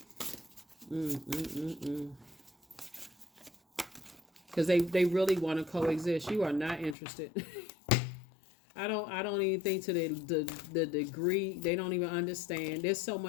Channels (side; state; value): right; drops out; at 7.0 s